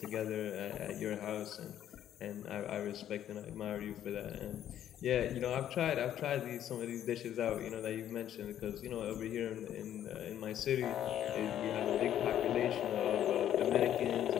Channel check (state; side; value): quieter; right; 10.9 dB